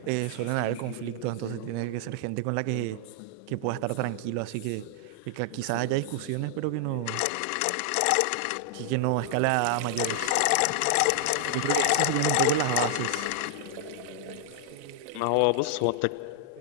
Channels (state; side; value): different; both; correlation 0.00